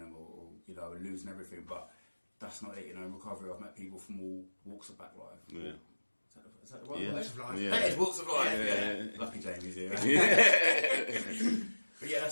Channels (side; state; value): both; inverted; correlation -1.00